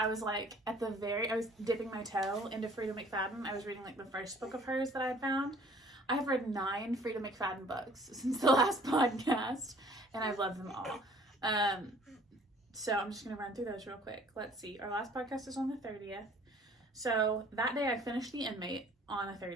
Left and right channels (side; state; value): both; normal; correlation 0.54